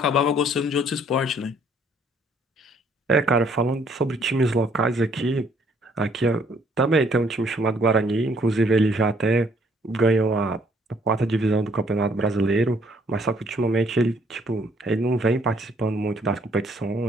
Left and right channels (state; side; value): normal; both; correlation 0.64